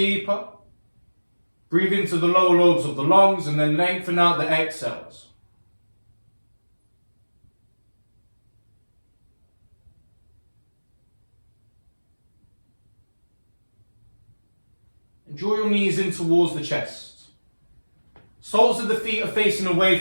Breathe into the lower lobes of the lungs and then lengthen out the exhales. And draw your knees in towards the chest. Soles of the feet are facing away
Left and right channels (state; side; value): inverted; both; correlation -1.00